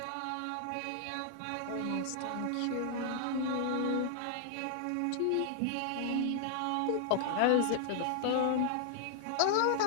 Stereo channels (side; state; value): both; different; correlation 0.00